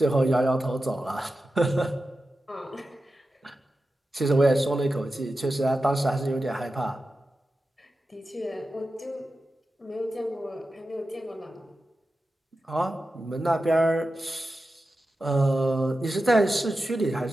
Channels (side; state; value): both; normal; correlation 0.92